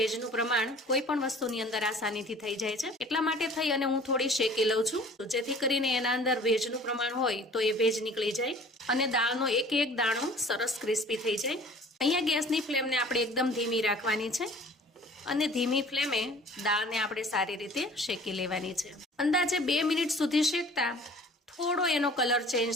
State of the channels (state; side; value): normal; both; correlation 0.49